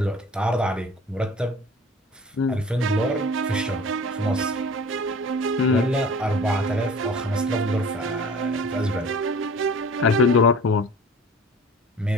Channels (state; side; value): normal; both; correlation 0.43